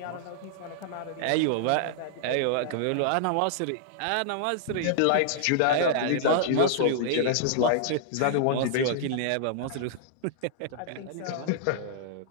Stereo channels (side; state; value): both; different; correlation -0.01